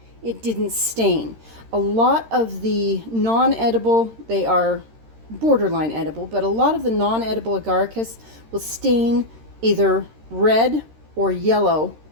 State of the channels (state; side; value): late; left; 13 ms